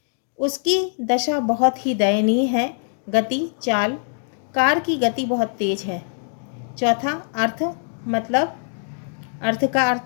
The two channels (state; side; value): silent; right; digital silence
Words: उसकी दशा बहुत ही दयनीय है। गति, चाल। कार की गति बहुत तेज है। चौथा, अर्थ, मतलब। अर्थ का